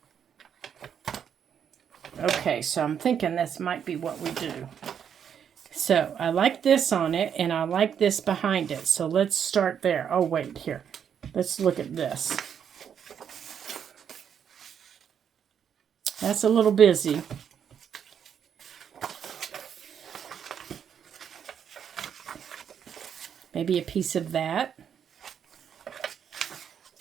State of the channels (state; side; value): quieter; left; 8.2 dB